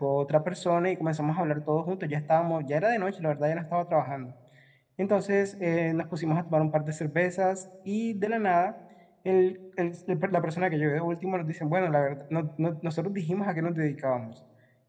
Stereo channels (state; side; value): identical; both; correlation 1.00